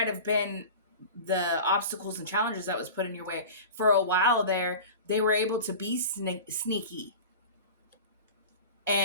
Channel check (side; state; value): both; inverted; correlation -0.33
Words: have been the obstacles and challenges that was put in your way. For a while there, they were able to be sneaky